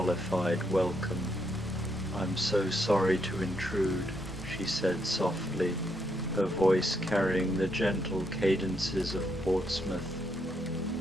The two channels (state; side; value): normal; both; correlation 0.77